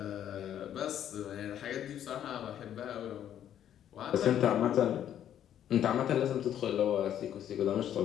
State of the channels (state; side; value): quieter; right; 10.4 dB